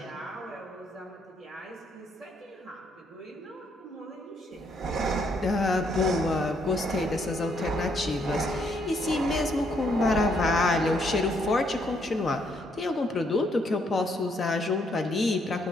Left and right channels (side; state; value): both; normal; correlation 0.72